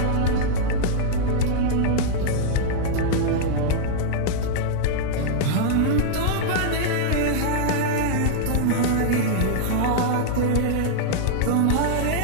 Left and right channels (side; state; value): both; different; correlation -0.01